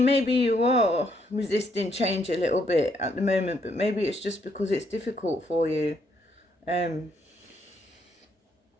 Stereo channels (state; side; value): normal; both; correlation 0.73